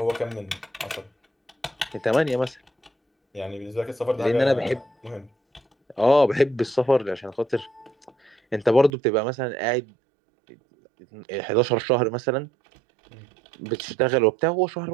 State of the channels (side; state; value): left; drops out; at 8.9 s